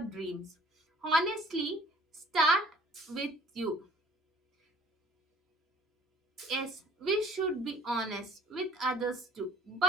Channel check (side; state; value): both; normal; correlation 0.54